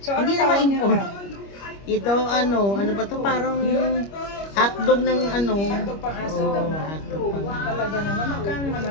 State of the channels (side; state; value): right; late; 25 ms